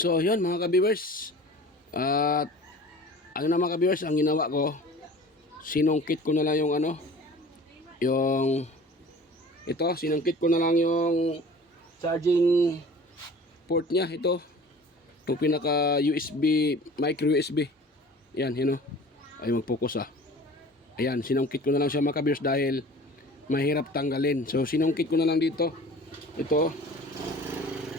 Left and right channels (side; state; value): both; normal; correlation 0.44